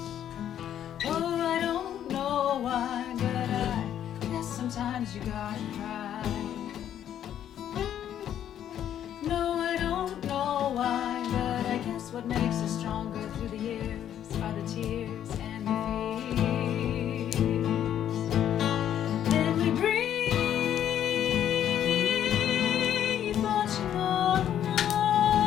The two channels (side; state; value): right; quieter; 10.4 dB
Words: Oh, I don't know why, but I guess sometimes you gotta cry. No, I don't know why, but I guess what makes us stronger through the years are the tears and the fears. And we breathe much more,